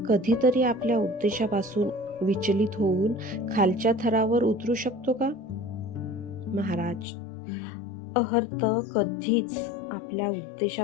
कधीतरी आपल्या उद्देशापासून विचलित होऊन खालच्या थरावर उतरू शकतो का? महाराज, अर्हंत कधीच आपल्या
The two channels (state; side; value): drops out; right; at 7.1 s